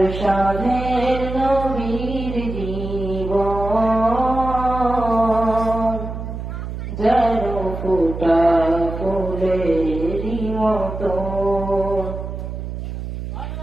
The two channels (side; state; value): right; noise; hum, 7 dB below the sound